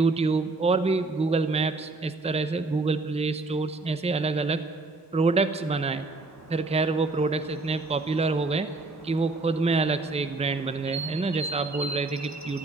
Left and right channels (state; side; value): quieter; left; 3.4 dB